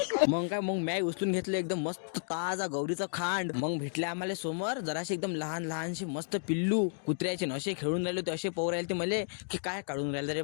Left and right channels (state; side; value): silent; right; digital silence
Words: मग काय, मग मॅ उचलून घेतलं एकदम मस्त ताजा गौरीचं खांड. मग भेटले आम्हाला समोर जराशी एकदम लहान लहानशी मस्त पिल्लू कुत्र्याचे नशे खेळून राहिले होते. असे पोर राहिले ते मले की काय काढून राहिले रे,